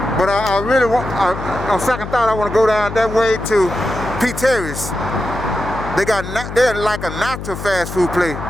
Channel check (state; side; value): noise; left; hum, 8 dB below the sound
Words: But I really want, on second thought, I want to go down that way to P.Terry's. They're like a natural fast food place.